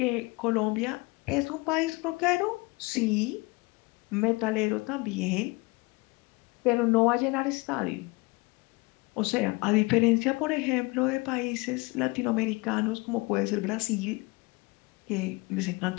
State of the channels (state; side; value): quieter; right; 25.4 dB